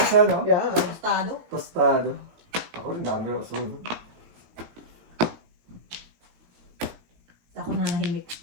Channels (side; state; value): left; late; 18 ms